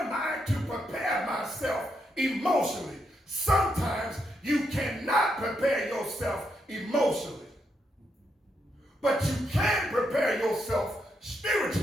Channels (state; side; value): normal; both; correlation 0.80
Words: I to prepare myself emotionally? Sometimes you cannot prepare yourself emotionally, but you can prepare yourself